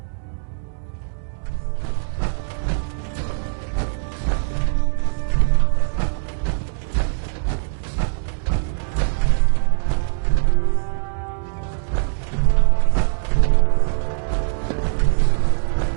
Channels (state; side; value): silent; left; digital silence